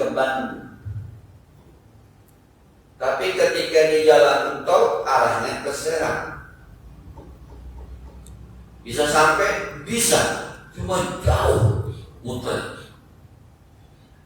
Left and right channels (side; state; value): both; identical; correlation 1.00